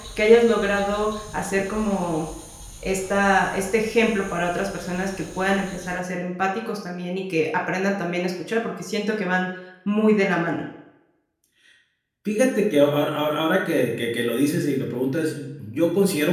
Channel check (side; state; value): both; identical; correlation 1.00